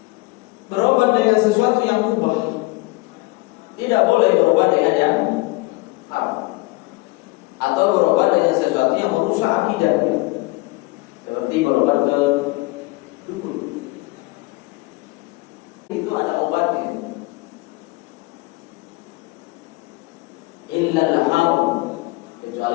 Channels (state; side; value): quieter; right; 23.2 dB